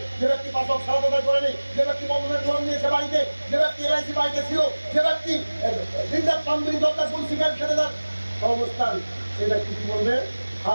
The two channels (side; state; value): both; inverted; correlation -1.00